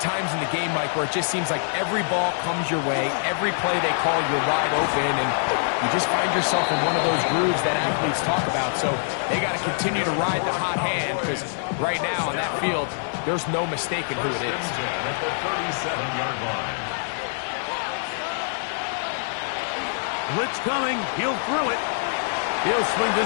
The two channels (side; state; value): right; silent; digital silence